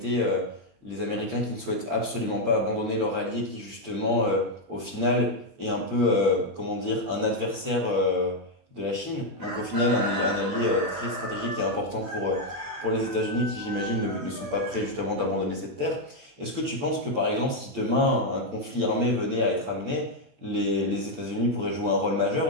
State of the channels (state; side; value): late; left; 20 ms